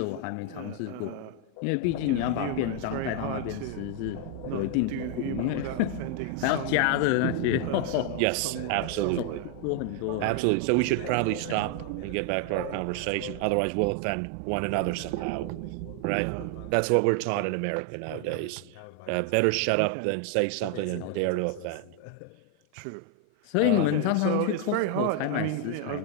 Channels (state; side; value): different; both; correlation 0.00